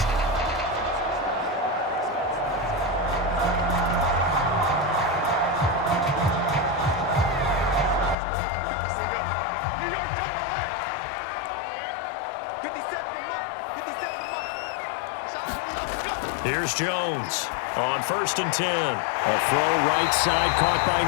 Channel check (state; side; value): drops out; right; at 8.2 s